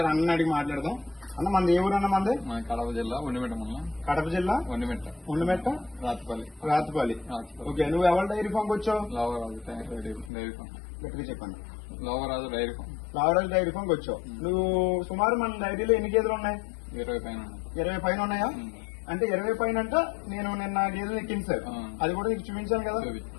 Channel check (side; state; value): right; drops out; at 10.3 s